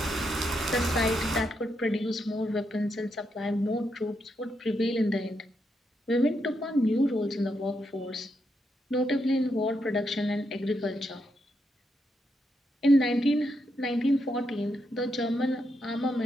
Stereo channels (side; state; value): both; normal; correlation 0.81